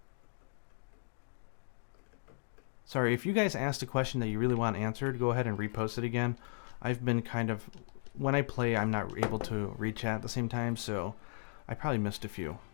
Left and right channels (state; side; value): silent; right; digital silence